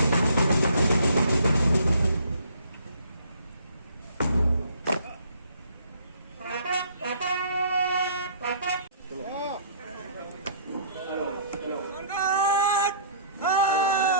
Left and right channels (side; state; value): both; inverted; correlation -0.56